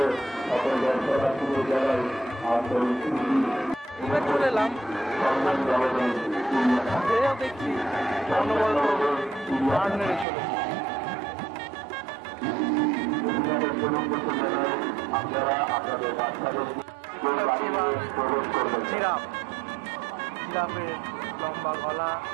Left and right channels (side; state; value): left; drops out; at 10.2 s